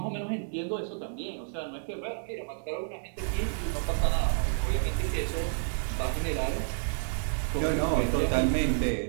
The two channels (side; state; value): left; silent; digital silence